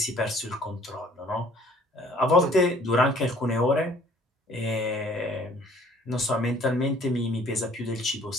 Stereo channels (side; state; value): both; normal; correlation 0.55